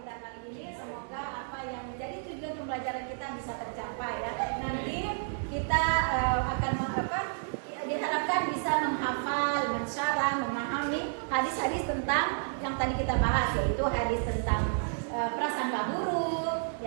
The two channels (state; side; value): silent; left; digital silence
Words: kali ini. Semoga apa yang menjadi tujuan pembelajaran kita bisa tercapai ya. Nanti kita akan diharapkan bisa menghafal, mensyarah, memahami hadis-hadis tentang yang tadi kita bahas, yaitu hadis tentang prasangka buruk,